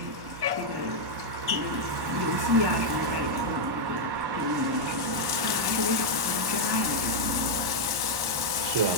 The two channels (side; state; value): left; late; 1.1 ms